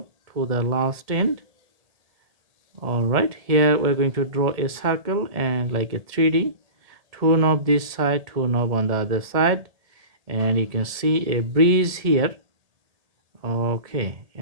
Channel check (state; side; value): late; left; 1.7 ms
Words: to the last end. All right, here we're going to draw a circle and like a 3D, two knob this side, two knob on the other side, and you can see a breeze here. Okay,